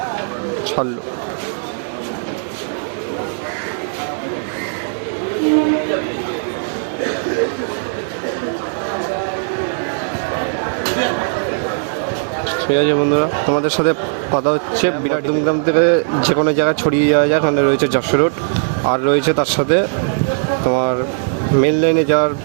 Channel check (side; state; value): left; silent; 63 dB below the other